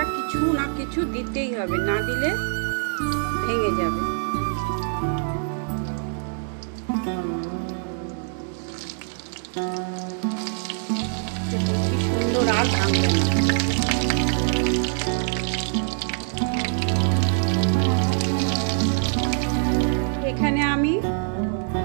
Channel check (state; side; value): silent; left; 57 dB below the other